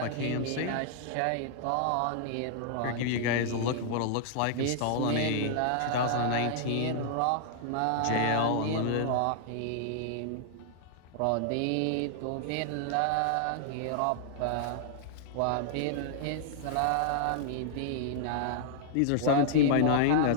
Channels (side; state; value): both; different; correlation -0.01